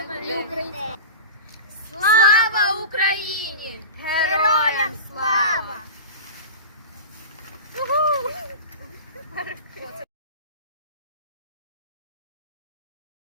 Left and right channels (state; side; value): inverted; both; correlation -0.31